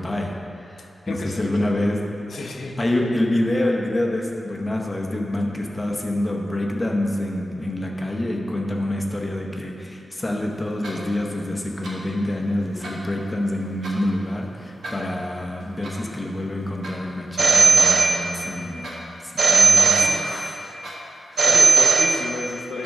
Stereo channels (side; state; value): both; normal; correlation 0.93